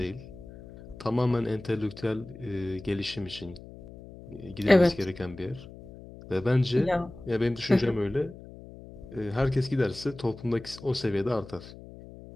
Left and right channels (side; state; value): left; noise; hum, 16 dB below the sound